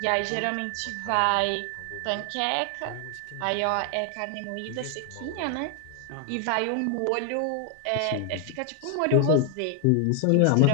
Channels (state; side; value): different; both; correlation 0.00